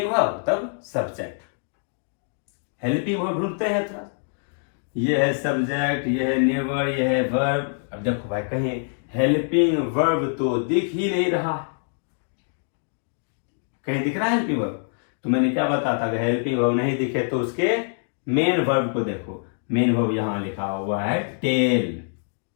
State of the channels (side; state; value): right; silent; 60 dB below the other